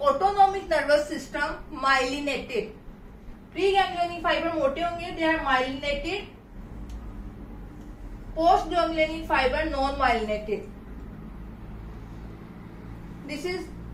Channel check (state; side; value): identical; both; correlation 1.00